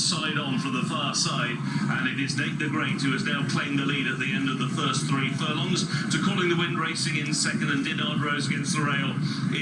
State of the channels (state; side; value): identical; both; correlation 1.00